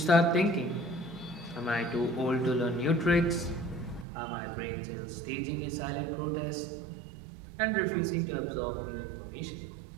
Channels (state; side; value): drops out; left; at 4.0 s